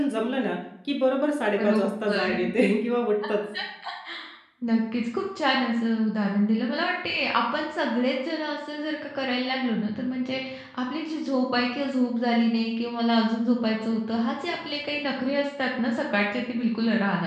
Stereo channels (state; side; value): identical; both; correlation 1.00